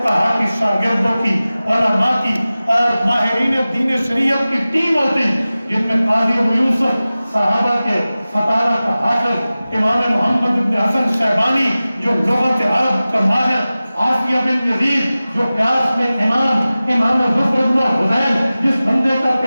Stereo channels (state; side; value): inverted; both; correlation -0.96